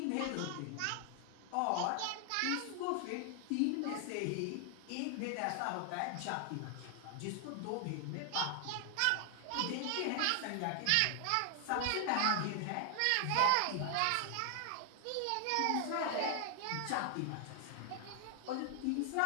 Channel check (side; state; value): both; different; correlation 0.00